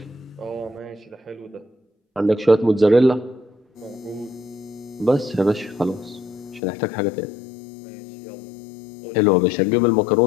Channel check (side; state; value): right; drops out; at 6.6 s